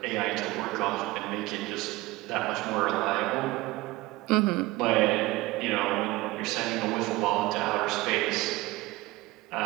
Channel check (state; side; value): quieter; left; 19.9 dB